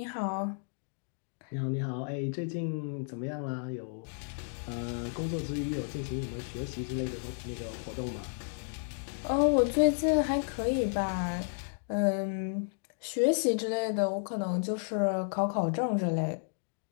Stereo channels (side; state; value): right; silent; digital silence